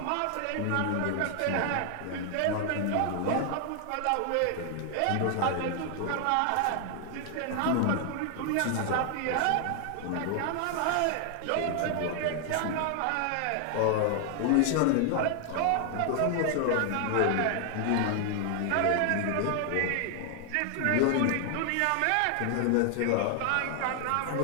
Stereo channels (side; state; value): both; different; correlation 0.00